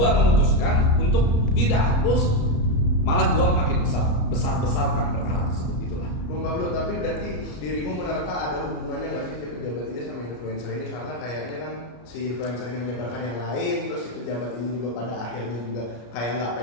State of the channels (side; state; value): right; late; 34 ms